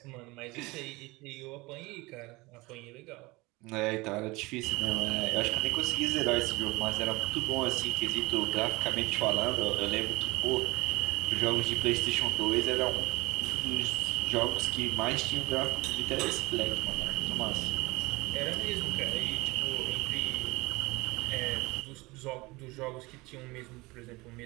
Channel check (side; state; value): left; quieter; 22.9 dB